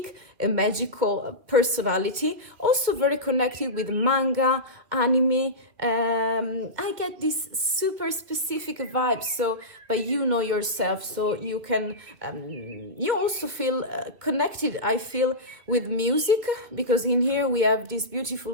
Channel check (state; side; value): late; left; 2.7 ms